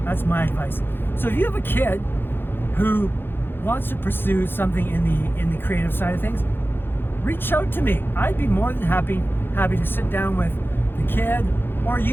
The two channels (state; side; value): late; right; 0.10 ms